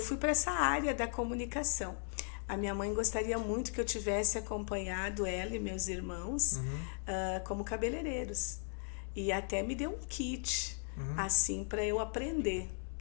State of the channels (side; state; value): right; silent; 53 dB below the other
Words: para essa área da comunicação. A minha mãe gostaria muito que eu tivesse acompanhado ela e meus irmãos como cabeleireiros. E até me deu um kit, assim, para eu aprender.